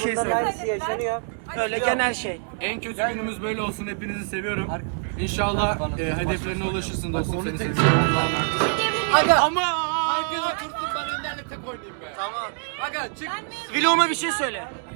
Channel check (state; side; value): silent; left; 62 dB below the other